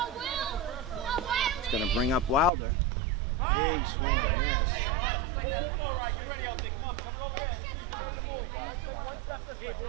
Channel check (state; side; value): drops out; left; at 2.5 s